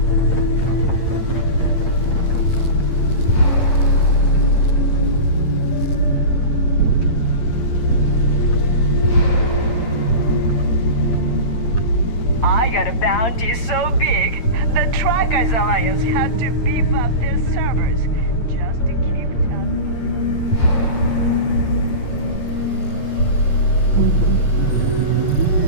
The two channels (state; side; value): late; right; 8.8 ms